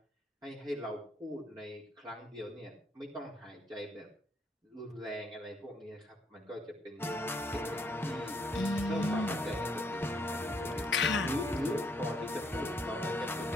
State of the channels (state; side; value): normal; both; correlation 0.70